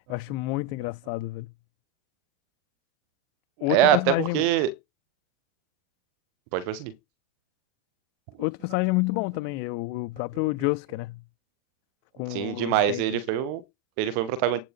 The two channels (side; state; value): left; late; 40 ms